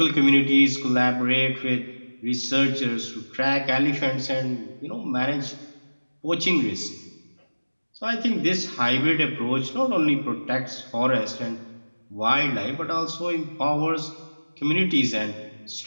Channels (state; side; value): inverted; both; correlation -1.00